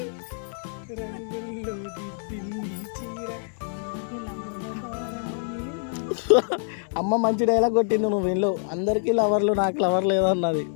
రంగుల్లో దిద్దింది చీర. అమ్మ మంచి డైలాగ్ కొట్టింది. నువ్వు వీళ్ళు అందరికీ లవర్లు, నాకు లవర్ లేదన్నది.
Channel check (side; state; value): right; silent; 61 dB below the other